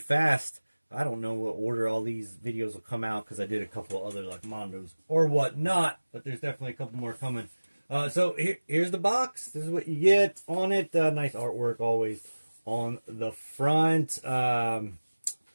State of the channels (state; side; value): inverted; both; correlation -1.00